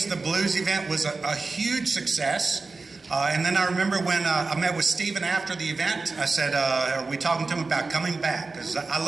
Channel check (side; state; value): left; quieter; 3.9 dB